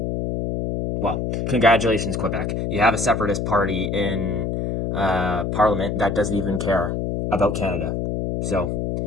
Well, congratulations, Quebec. You have a separatist party in Parliament that doesn't even care about Canada. So,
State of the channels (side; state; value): left; noise; hum, 1 dB below the sound